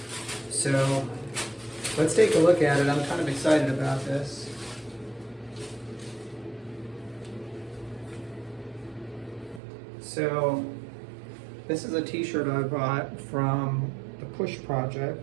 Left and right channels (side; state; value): left; drops out; at 9.6 s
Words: So let's take a look at it. I'm kind of excited about this. So this is a t-shirt I bought from the P.U.S.H